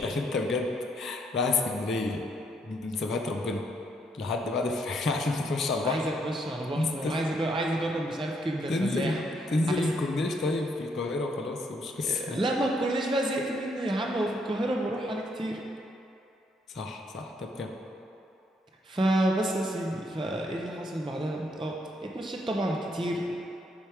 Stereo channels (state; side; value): normal; both; correlation 0.73